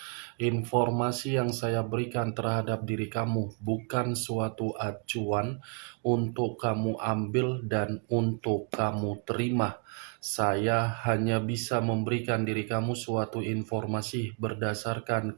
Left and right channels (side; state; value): left; quieter; 37.9 dB